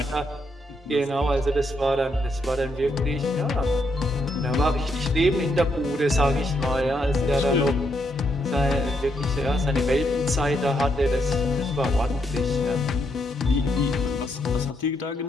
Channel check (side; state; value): both; normal; correlation 0.78